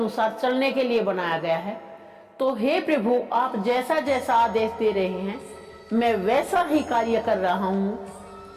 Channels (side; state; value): both; identical; correlation 1.00